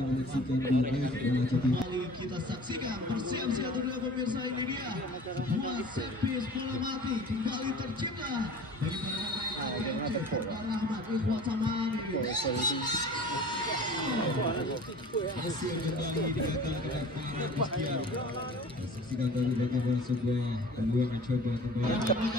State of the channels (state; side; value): normal; both; correlation 0.43